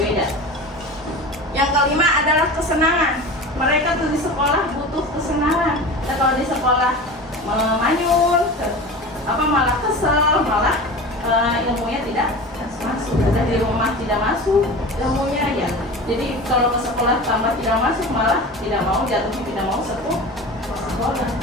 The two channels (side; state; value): both; normal; correlation 0.33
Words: Yang kelima adalah kesenangan. Mereka tuh di sekolah butuh kesenangan. Dan kalau di sekolah manyun, malah kesel, malah ilmunya tidak masuk. Dan di rumah tidak masuk ilmunya ya. Jadi kalau ke sekolah tambah tidak masuk, malah tidak mau, jatuhnya tidak mau sekolah.